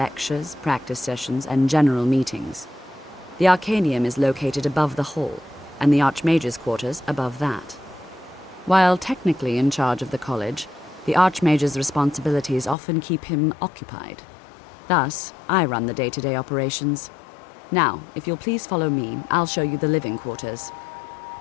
practice sessions, and general meetings. The Arcanium is located above the hall, and the Archmage's quarters above that. While technically in charge of the college, the Archmage's responsibilities often keep him occupied. Thus, I run the day-to-day operations. Now, if you'll please follow me, I'll show you the living quarters.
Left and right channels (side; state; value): right; drops out; at 12.8 s